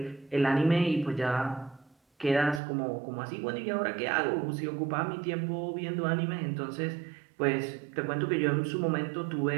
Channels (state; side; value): drops out; left; at 2.6 s